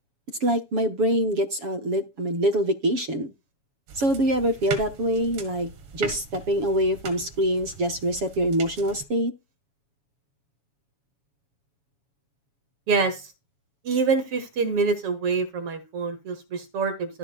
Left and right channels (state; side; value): late; left; 7.2 ms